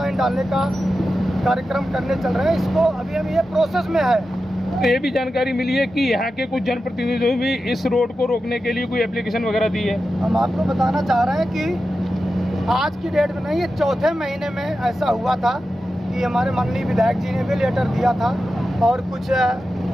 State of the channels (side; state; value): both; normal; correlation 0.91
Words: डालने का कार्यक्रम करने चल रहे हैं। इसको अभी हम ये प्रोसेस में है। ये भी जानकारी मिली है कि यहाँ के कुछ जनप्रतिनिधियों ने भी इस रोड को रोकने के लिए कोई एप्लीकेशन वगैरह दी है। हम आपको बताना चाह रहे हैं कि आज की डेट में नहीं, ये चौथे महीने में ऐसा हुआ था कि हमारे माननीय विधायक जी ने भी लेटर दिया था और कुछ